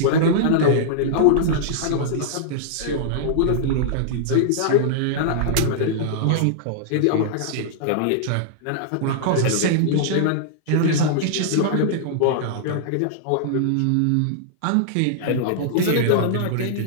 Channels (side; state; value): both; different; correlation -0.01